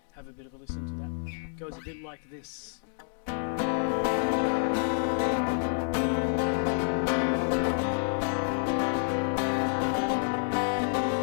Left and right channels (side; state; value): right; silent; 59 dB below the other